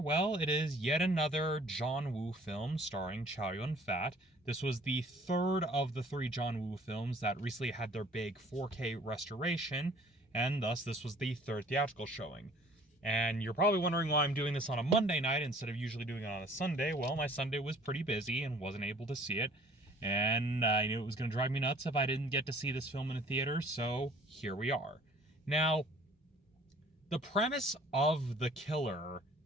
Well, it is yet another John Woo film starring Chow Yun-fat. This was the third of the three John Woo films that recently had their big 4K restoration, and thus this was the third theatrical showing. And you're probably wondering why I'm doing this on a Monday night instead of usually doing it on a Sunday. Well, my Sunday was pretty busy and wasn't able to see it. And I knew it was going to drive me nuts if I didn't get to see this film in a theater, so here we are. Now, the premise of The Killer,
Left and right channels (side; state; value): both; normal; correlation 0.53